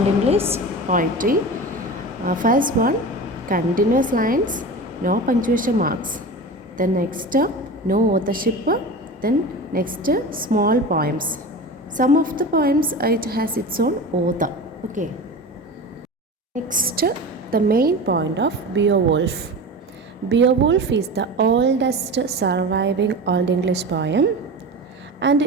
English poetry. First one, continuous lines, no punctuation marks. Then next, no authorship. Then next, small poems. Some of the poems, it has its own author. Okay. Next, the main point of Beowulf. Beowulf is the oldest surviving Old English poem, and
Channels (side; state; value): both; normal; correlation 0.30